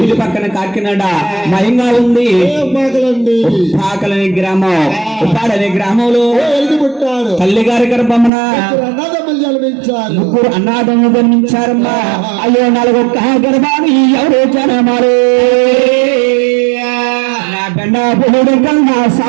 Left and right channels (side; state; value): left; drops out; at 8.3 s